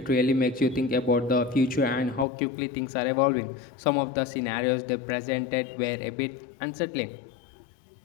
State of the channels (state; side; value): drops out; right; at 2.2 s